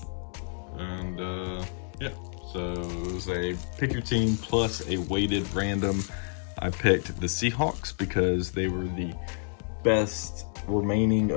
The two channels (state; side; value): silent; right; 59 dB below the other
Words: and yeah, so it was a pick your team plus a weighted random. I picked the Seahawks because they were the best remaining